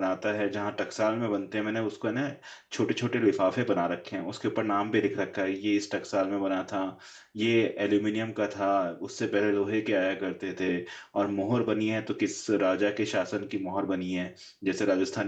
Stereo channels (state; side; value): identical; both; correlation 1.00